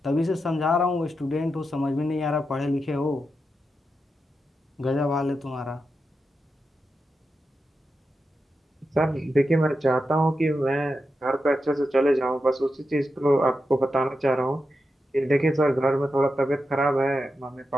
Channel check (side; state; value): both; normal; correlation 0.88